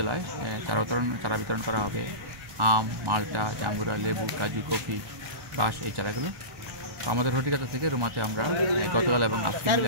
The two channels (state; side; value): late; left; 1.3 ms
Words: চারা বিতরণ করা হবে আম, মালটা, জাম্বুরা, লেবু, কাজু, কফি, বাঁশ এই চারাগুলো। তো আমাদের হর্টিকালচার থেকে রুমাতে আমরা গতকাল এবং আজকে মিলে